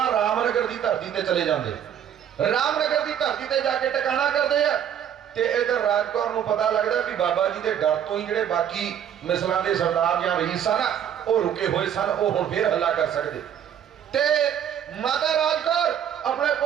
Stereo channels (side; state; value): left; quieter; 9.4 dB